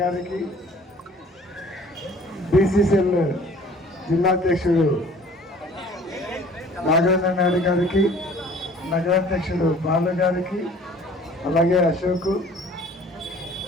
గారికి, బీసీసీఎల్ జిల్లా అధ్యక్షుడు నాగేంద్ర నాయుడు గారికి, నగరాధ్యక్షుడు బాలు గారికి, అలాగే అశోక్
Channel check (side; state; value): both; normal; correlation 0.51